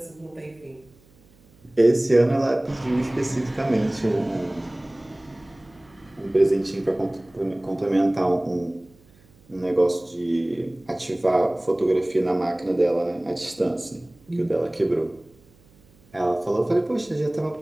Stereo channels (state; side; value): noise; right; hum, 29 dB below the sound